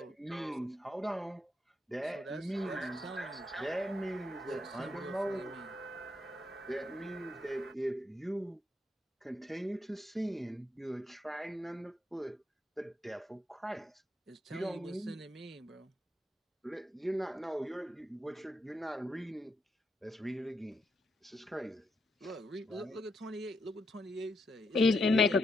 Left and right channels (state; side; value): normal; both; correlation 0.79